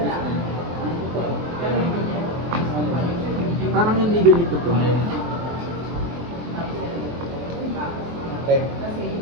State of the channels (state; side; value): late; left; 23 ms